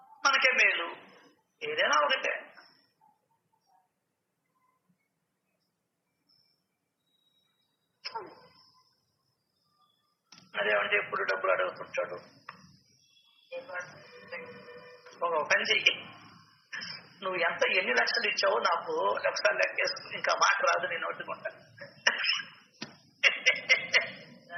మనకే మేలు. ఏదైనా ఒకటే. అదేమంటే ఎప్పుడు డబ్బులు అడుగుతుంటాడు. ఒక పని చెయ్యి, నువ్వు ఎన్ని లక్షలు ఇచ్చావో నాకు ఒకసారి లెక్కేసుకు, ఇంకా మాట రాదు నేను ఒట్టుకుంటా.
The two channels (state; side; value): identical; both; correlation 1.00